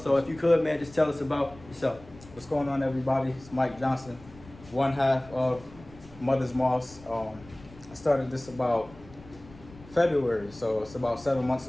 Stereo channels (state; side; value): noise; left; rumble, 21 dB below the sound